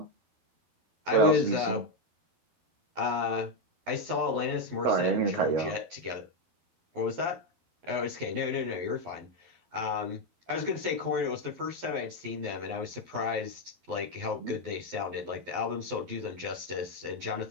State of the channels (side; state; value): left; late; 11 ms